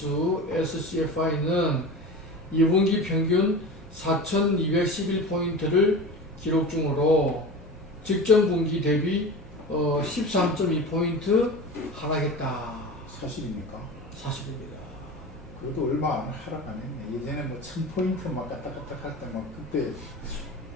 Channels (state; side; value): normal; both; correlation 0.31